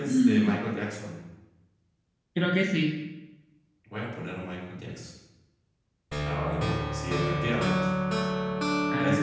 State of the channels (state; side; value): identical; both; correlation 1.00